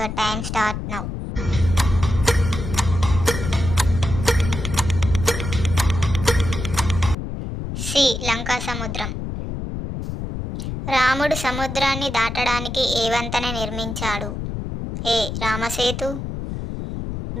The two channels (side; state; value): left; noise; rumble, 5 dB below the sound